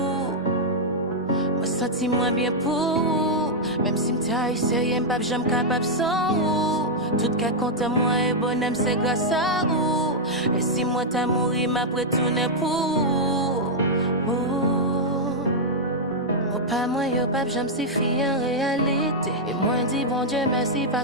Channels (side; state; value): both; normal; correlation -0.04